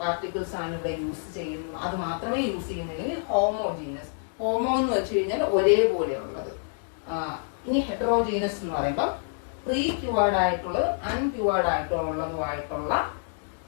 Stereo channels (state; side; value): silent; right; digital silence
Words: ആണ് ഇവിടെ യൂസ് ചെയ്യുന്നത്. അത് മാത്രമേ യൂസ് ചെയ്യുന്നില്ലെങ്കിൽ ഹോമോജീനസ്. ഹോമോ എന്ന് വെച്ച് കഴിഞ്ഞാൽ ഒരേപോലെയുള്ളത്. ഇനി ഹെറ്ററോജീനസ് എന്ന് പറയുമ്പോൾ പ്രീ ക്യൂവേർഡ് ആയിട്ടുള്ളത് അൺക്യൂവേർഡ് ആയിട്ടുള്ളതുമായിട്ടുള്ള